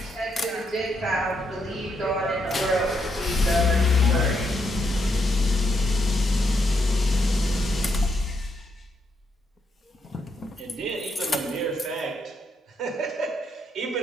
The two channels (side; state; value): both; normal; correlation 0.78